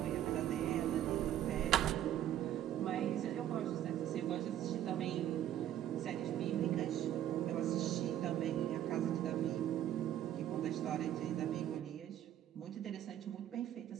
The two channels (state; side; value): quieter; left; 11.6 dB